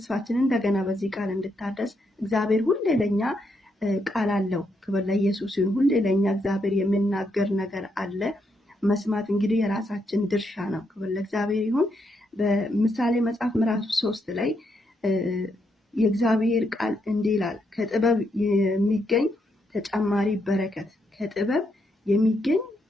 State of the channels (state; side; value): normal; both; correlation 0.78